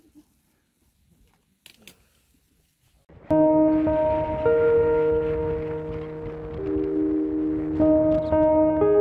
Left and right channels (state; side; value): identical; both; correlation 1.00